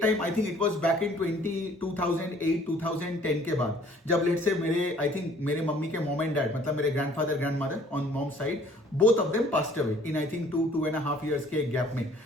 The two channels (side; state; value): both; normal; correlation 0.56